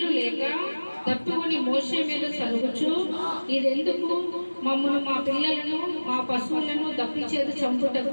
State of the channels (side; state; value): both; inverted; correlation -1.00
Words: లేక తప్పుకొని మోషే మీద సలుగుచు, ఇదెందుకు? మమ్మను, మా పిల్లలను, మా పశువులను దప్పిచేత